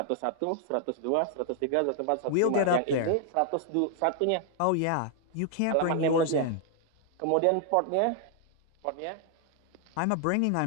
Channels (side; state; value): both; different; correlation 0.00